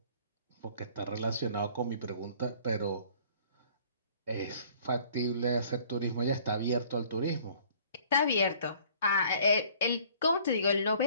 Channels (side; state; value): both; inverted; correlation -0.55